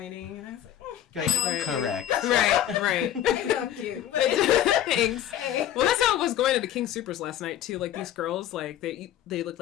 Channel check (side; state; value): right; quieter; 11.5 dB